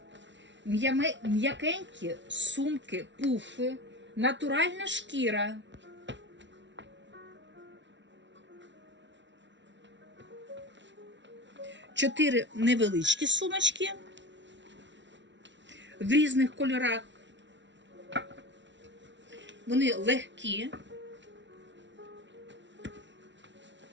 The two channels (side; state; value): left; late; 0.53 ms